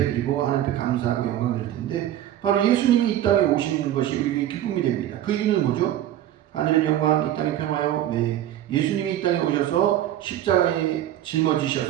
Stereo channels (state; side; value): quieter; left; 12.3 dB